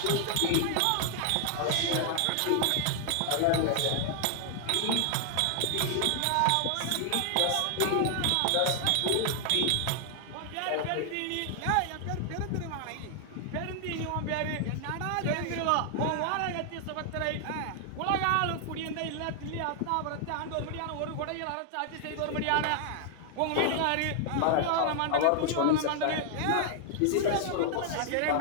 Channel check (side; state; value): both; different; correlation 0.00